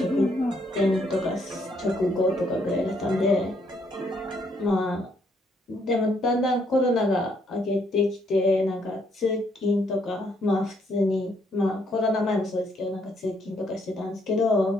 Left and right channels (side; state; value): both; normal; correlation 0.71